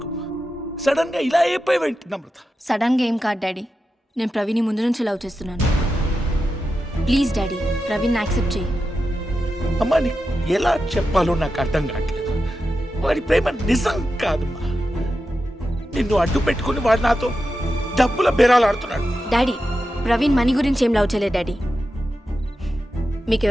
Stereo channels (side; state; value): both; normal; correlation 0.90